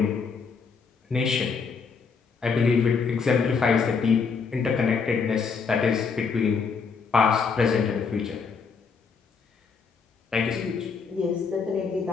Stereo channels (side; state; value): right; quieter; 5.4 dB